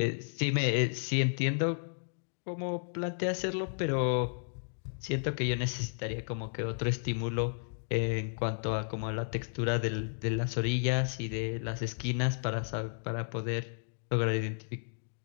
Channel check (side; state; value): right; silent; digital silence